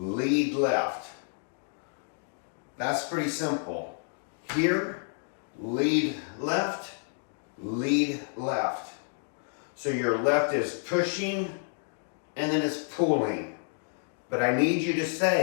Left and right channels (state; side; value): silent; right; 58 dB below the other